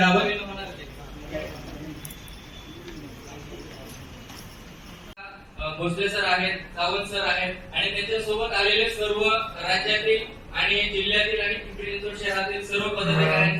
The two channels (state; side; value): identical; both; correlation 1.00